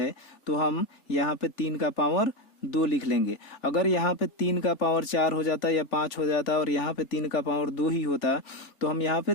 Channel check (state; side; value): late; right; 3.4 ms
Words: तो हम यहाँ पे 3 का पावर 2 लिख लेंगे। अगर यहाँ पे 3 का पावर 4 हो जाता या 5 हो जाता और यहाँ पे 3 का पावर 2 ही होता तो हम यहाँ पे